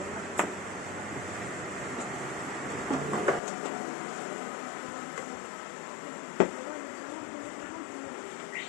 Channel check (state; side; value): drops out; right; at 3.4 s